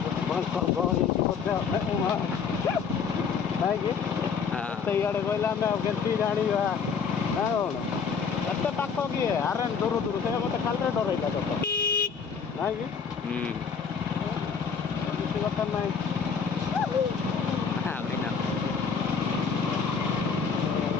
ଗହଳି ନାଇଁ କି ସେଇଆଡ଼େ କହିଲେ ଆମେ ଆଉ କେମିତି ଜାଣିବା ନା କ'ଣ ଏତେ ପାଖ କିଏ ଆରେ ଦୂର ଦୂର ସେ ମୋତେ ଖାଲିରେ ଡରେଇଲା ତ ନାଇଁ କି କିଛି କଥା ନାହିଁ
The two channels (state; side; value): quieter; right; 6.2 dB